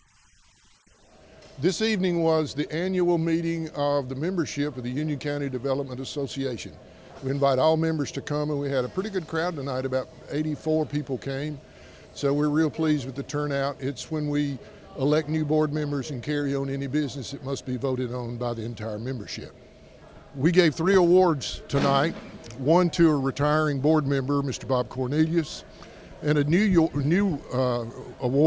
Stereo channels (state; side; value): identical; both; correlation 1.00